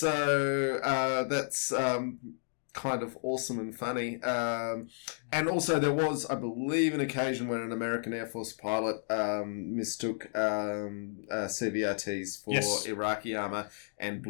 That's kind of awesome and funny. And also there was, I believe, an occasion when an American Air Force pilot mistook CVRTs for Iraqi armour and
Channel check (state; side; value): silent; right; digital silence